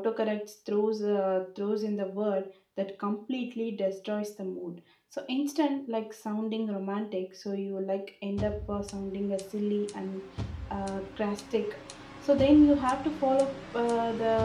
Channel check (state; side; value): identical; both; correlation 1.00